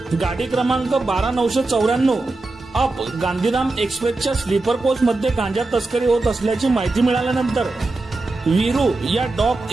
गाडी क्रमांक 12994 अप गांधीधाम एक्सप्रेसच्या स्लीपर कोच मध्ये गांजा तस्करी होत असल्याची माहिती मिळाल्यानंतर वीरू या डॉग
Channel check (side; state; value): left; quieter; 3.2 dB